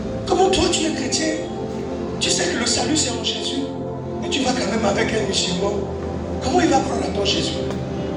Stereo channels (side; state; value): both; identical; correlation 1.00